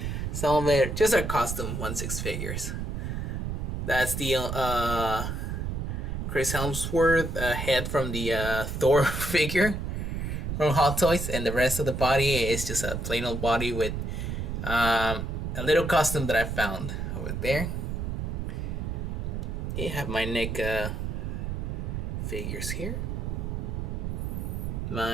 Some of it just are custom 1/6 figures. That's the Chris Hemsworth head from the Thor figure from Hot Toys, and the rest of the body is just a plain old body with a little custom that I found over there. You have my NECA figures here.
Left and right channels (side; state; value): right; noise; rumble, 3 dB below the sound